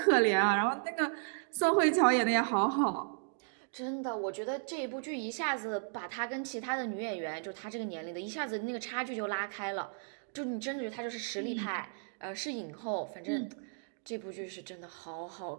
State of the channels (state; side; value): silent; left; digital silence